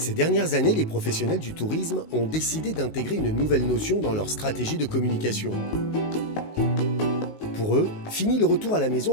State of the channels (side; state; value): right; late; 19 ms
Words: Ces dernières années, les professionnels du tourisme ont décidé d'intégrer une nouvelle notion dans leur stratégie de communication. Pour eux, fini le retour à la